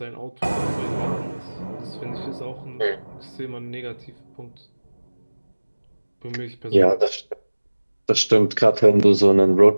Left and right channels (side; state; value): both; inverted; correlation -1.00